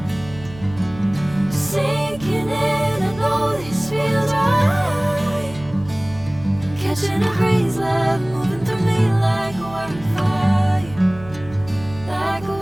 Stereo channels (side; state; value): right; noise; hum, 17 dB below the sound